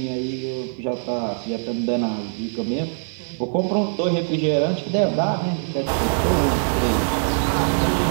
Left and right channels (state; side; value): silent; left; digital silence